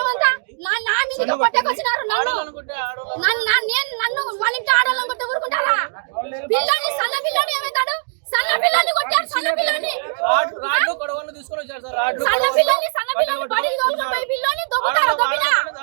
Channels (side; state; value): left; silent; digital silence